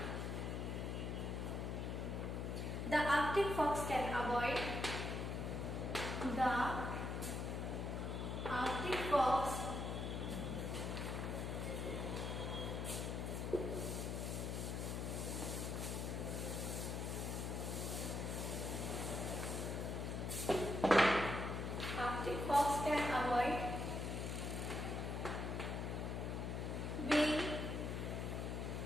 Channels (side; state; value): left; noise; hum, 2 dB below the sound